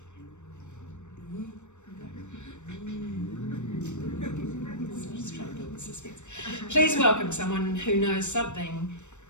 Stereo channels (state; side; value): late; right; 0.84 ms